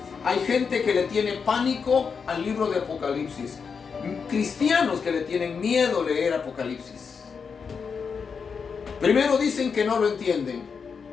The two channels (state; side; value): quieter; right; 5.8 dB